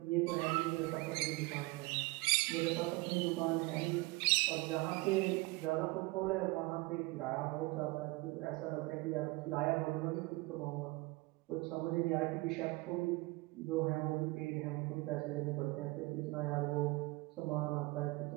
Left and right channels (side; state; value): left; quieter; 23.6 dB